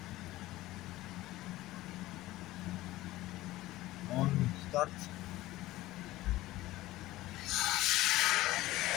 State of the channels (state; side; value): quieter; right; 17.1 dB